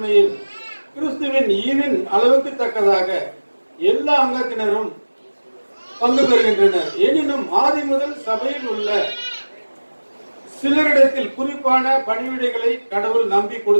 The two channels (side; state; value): both; inverted; correlation -1.00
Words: கிறிஸ்துவின் ஈவின் அளவுக்கு தக்கதாக எல்லா அங்கத்தினரும் பங்கு பெறுகின்றனர். எனினும் ஆதி முதல் சபையில் உள்ள சிலரிடத்தில் குறிப்பான பணிவிடைகளை கடவுள் நம்பி